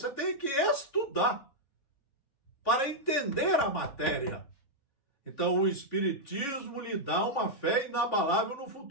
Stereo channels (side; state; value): right; late; 3.5 ms